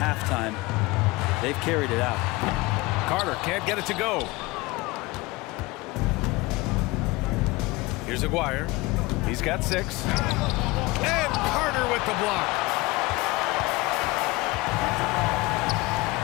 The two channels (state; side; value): quieter; right; 22.1 dB